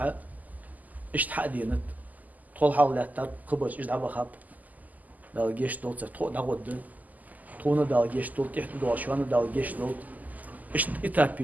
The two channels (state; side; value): late; left; 0.080 ms